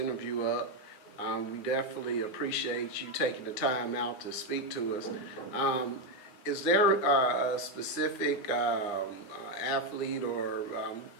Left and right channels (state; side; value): late; right; 9.4 ms